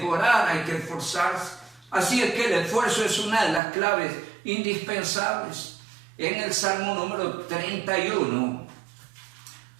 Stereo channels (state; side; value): drops out; left; at 3.6 s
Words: hay que esforzarse. Así es que el esfuerzo es una de las claves indispensables. En el Salmo número 31,